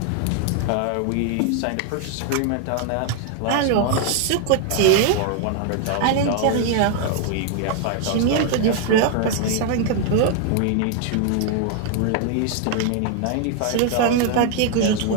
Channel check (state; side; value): different; both; correlation 0.00